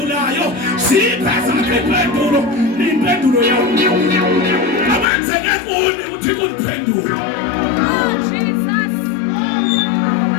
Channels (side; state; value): right; drops out; at 5.1 s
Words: siyipheza impendulo yami abenzeke kuni ukuthi kundiphendula.